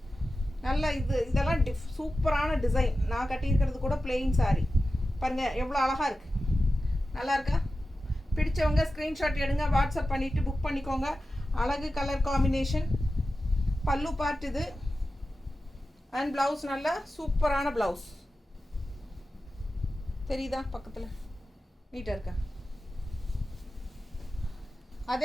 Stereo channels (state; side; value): normal; both; correlation 0.93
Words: நல்ல இதெல்லாம் சூப்பரான டிசைன். நான் கட்டியிருக்கிறது கூட பிளெயின் சாரீ பாருங்கள், எவ்வளோ அழகாக இருக்குது. நல்லா இருக்கா? பிடிச்சவங்க ஸ்க்ரீன்ஷாட் எடுங்க, வாட்ஸ்அப் பண்ணிவிட்டு புக் பண்ணிக்கோங்க. அழகு கலர் காம்பினேஷன். பல்லு பார்ட் இது. அண்ட் ப்ளவுஸ் நல்லா சூப்பரான ப்ளவுஸ் தெரியுதா? பக்கத்தில் நீட்டாக இருக்கா?